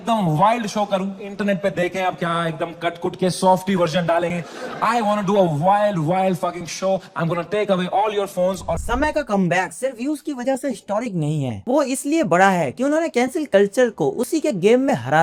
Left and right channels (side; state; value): both; identical; correlation 1.00